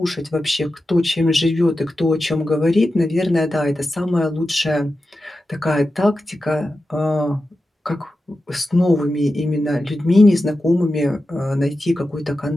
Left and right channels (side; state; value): both; normal; correlation 0.92